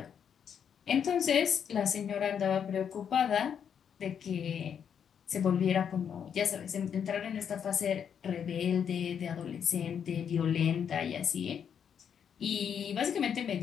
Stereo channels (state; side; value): quieter; right; 7.9 dB